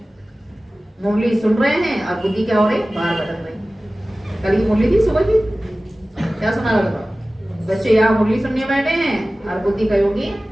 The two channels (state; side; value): normal; both; correlation 0.97